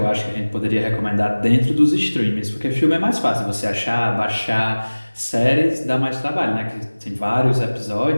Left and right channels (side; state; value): both; inverted; correlation -1.00